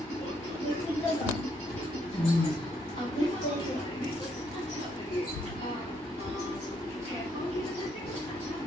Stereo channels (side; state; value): both; normal; correlation 0.72